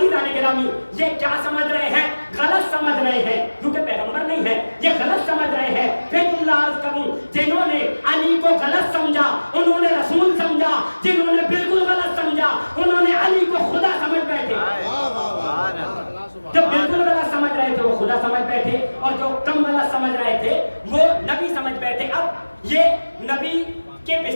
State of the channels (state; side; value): inverted; both; correlation -1.00